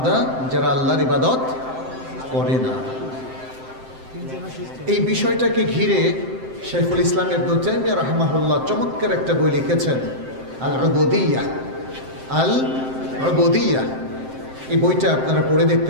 যারা আল্লাহর ইবাদত করে না। এই বিষয়টাকে ঘিরে শাইখুল ইসলাম ইবনে তাইমিয়া রাহিমাহুল্লাহ চমৎকার একটা বই লিখেছেন, আল উবুদিয়্যাহ। আল উবুদিয়্যাহ এই বইটা আপনারা পড়ে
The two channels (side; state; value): left; late; 7.7 ms